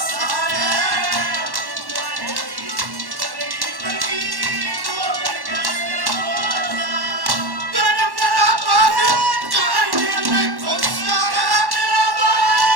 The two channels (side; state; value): left; late; 1.1 ms